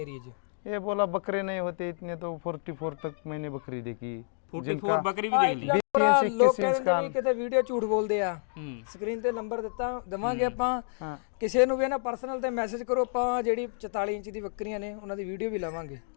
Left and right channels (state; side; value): silent; right; digital silence